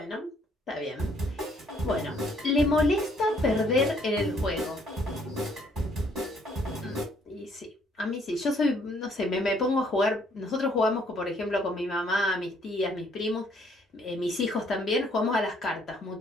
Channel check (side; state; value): both; normal; correlation 0.65